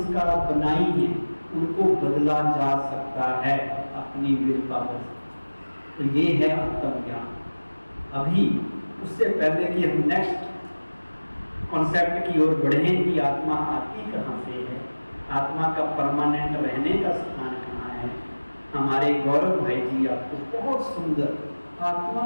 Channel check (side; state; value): both; inverted; correlation -1.00